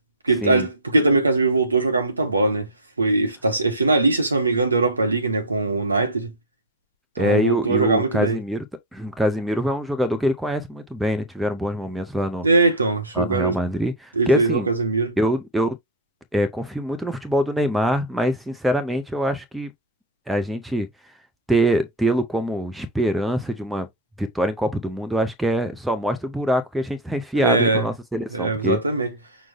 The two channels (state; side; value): normal; both; correlation 0.00